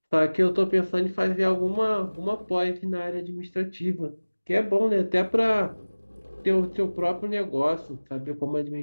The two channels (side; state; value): both; inverted; correlation -1.00